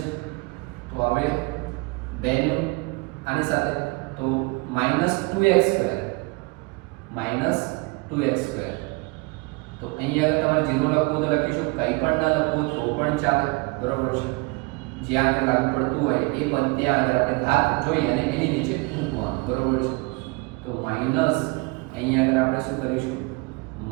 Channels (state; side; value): quieter; left; 27.1 dB